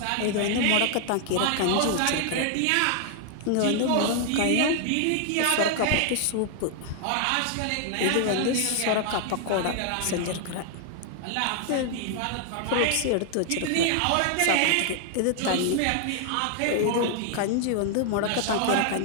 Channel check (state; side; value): different; both; correlation 0.00